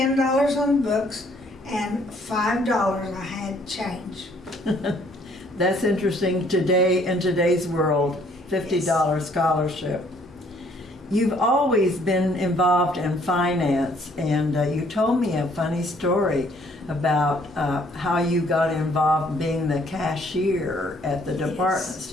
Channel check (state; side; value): normal; both; correlation 0.63